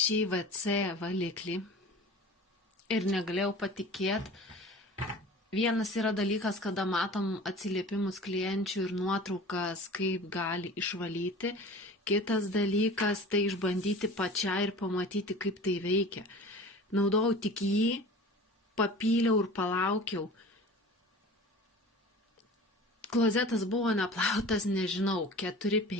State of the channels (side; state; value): both; normal; correlation 0.40